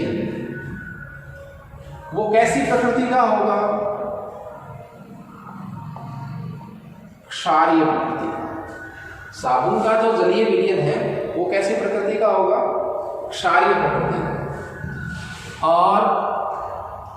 वो कैसी प्रकृति का होगा, क्षारीय प्रकृति। साबुन का जो जलीय विलयन है वो कैसी प्रकृति का होगा, क्षारीय प्रकृति का। और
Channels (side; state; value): both; identical; correlation 1.00